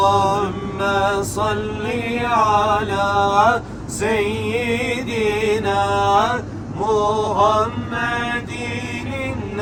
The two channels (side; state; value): both; identical; correlation 1.00